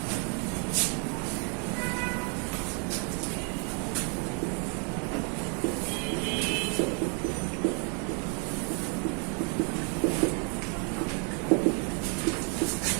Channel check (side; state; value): left; quieter; 37.8 dB